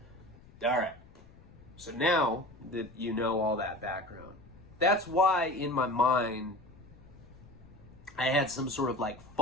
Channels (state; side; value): noise; left; rumble, 22 dB below the sound